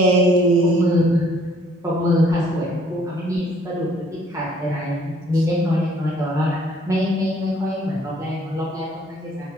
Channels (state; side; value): normal; both; correlation 0.61